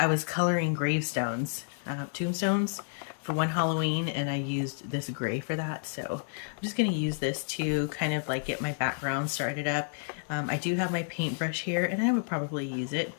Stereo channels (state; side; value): silent; right; digital silence